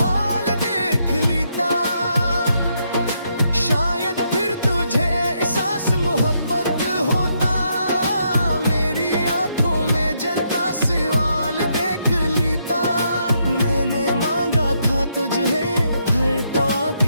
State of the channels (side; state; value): both; inverted; correlation -0.77